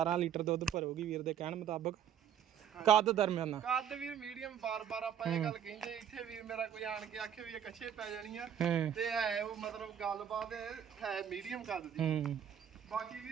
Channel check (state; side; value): quieter; left; 9.1 dB